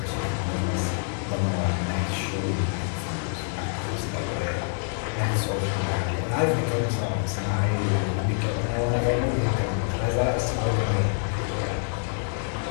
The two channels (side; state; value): right; silent; 61 dB below the other